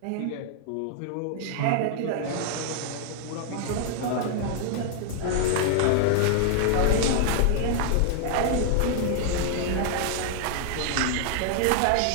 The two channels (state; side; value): different; both; correlation -0.01